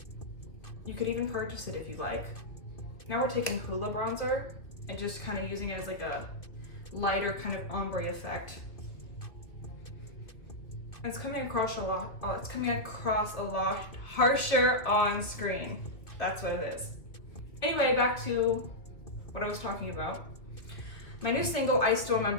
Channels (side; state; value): right; late; 2.3 ms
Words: You could even purchase it if you like. Now we're taking Hoola bronzer and just kind of using it as like a lighter kind of ombre effect. It's coming across a lot. Oh, it's coming across a lot harsher on screen. That's what it is. Anyway, back to what I was talking about. My new single, I Still